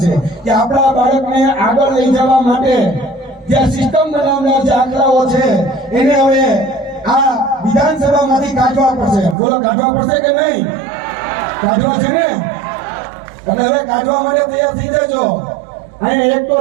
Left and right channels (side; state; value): left; drops out; at 9.3 s